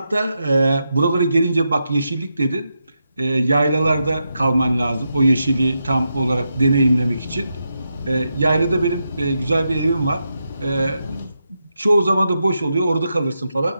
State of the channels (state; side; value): inverted; both; correlation -0.86